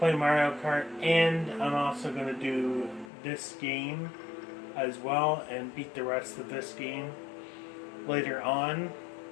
Mario Kart, and I'm also gonna do this game as well and beat the rest of this game later on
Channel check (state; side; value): drops out; right; at 3.1 s